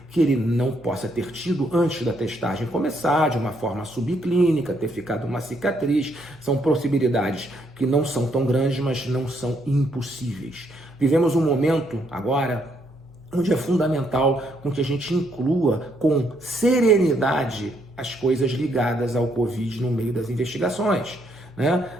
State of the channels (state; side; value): noise; left; hum, 26 dB below the sound